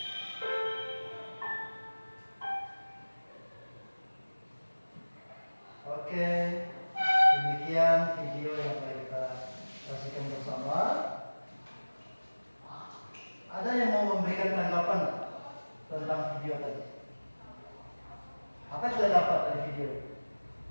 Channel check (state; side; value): inverted; both; correlation -1.00